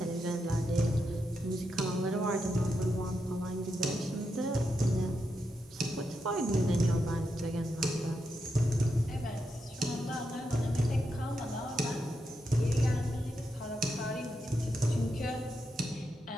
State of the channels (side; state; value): both; normal; correlation 0.84